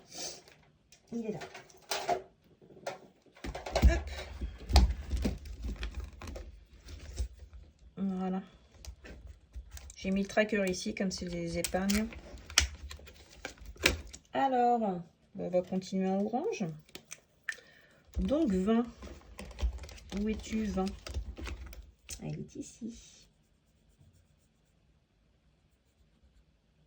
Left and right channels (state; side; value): identical; both; correlation 1.00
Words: Il est là. Hop. Voilà. J'ai mis le tracker ici, comme c'est les épargnes. Alors, on va continuer en orange. Donc 20. Où es-tu, 20? Elle est ici.